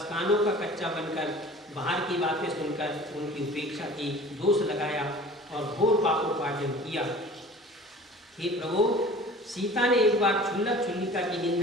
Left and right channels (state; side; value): normal; both; correlation 0.44